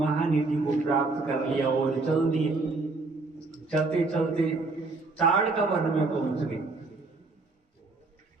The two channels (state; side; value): quieter; left; 3.5 dB